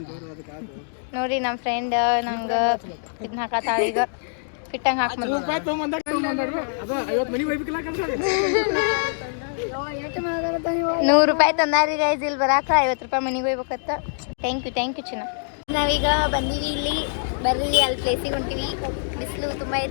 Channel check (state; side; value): silent; right; digital silence